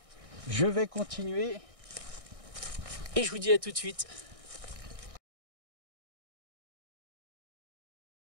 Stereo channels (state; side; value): late; left; 1.6 ms